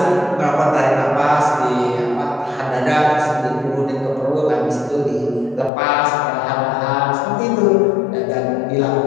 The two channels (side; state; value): right; drops out; at 5.7 s